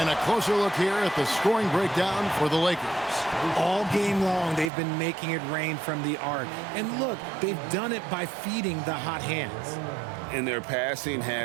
a closer look here at the scoring breakdown for the Lakers. All game long, they've been making it rain from the arc. And look, they've done it by feeding the hot hands. And their passing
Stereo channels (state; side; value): drops out; left; at 4.7 s